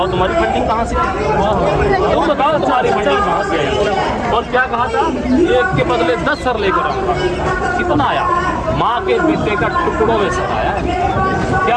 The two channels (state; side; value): identical; both; correlation 1.00